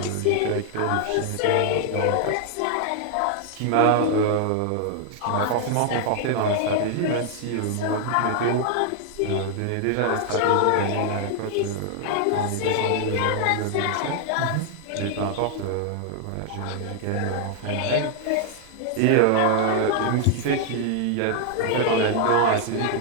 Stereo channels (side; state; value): both; different; correlation 0.00